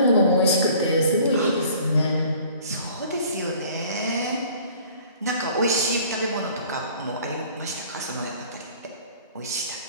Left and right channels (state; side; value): inverted; both; correlation -0.51